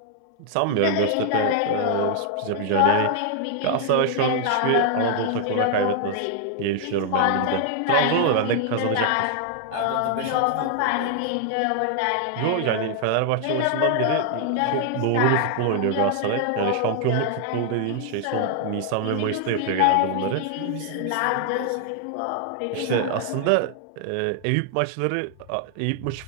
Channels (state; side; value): different; both; correlation 0.00